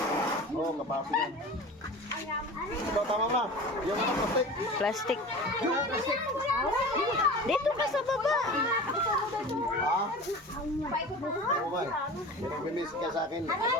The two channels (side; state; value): both; normal; correlation 0.36